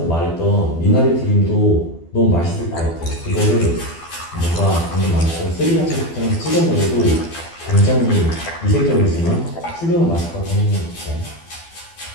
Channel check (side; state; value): right; late; 12 ms